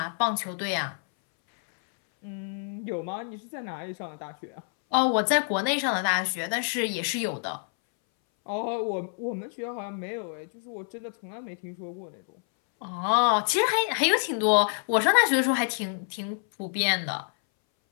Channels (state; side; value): silent; right; 60 dB below the other